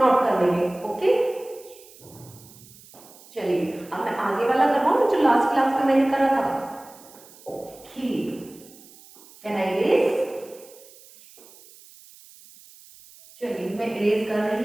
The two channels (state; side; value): noise; right; hiss, 23 dB below the sound